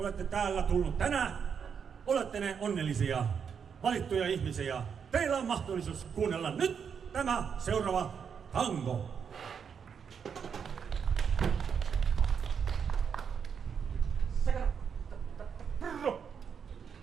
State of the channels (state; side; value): quieter; left; 6.9 dB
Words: täällä tullut tänään, olette ne onnellisia, valittuja ihmisiä. Teillä on mahdollisuus kuunnella nyt tämä seuraava tango.